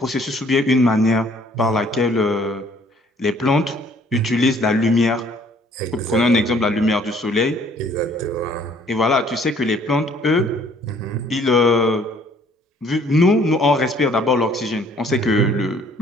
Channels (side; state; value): both; normal; correlation 0.59